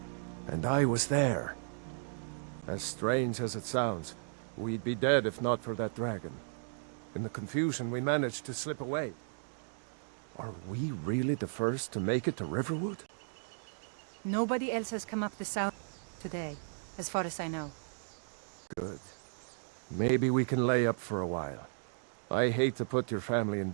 And I was there. As strange as it sounds, we'd be dead if not for that dragon. In the confusion, we managed to slip away. Are we really the first to make it to Riverwood? Nobody else has come up the south today, as far as I know. Good. Maybe we can lay up for a while. I hate to put your family in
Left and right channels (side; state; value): left; silent; digital silence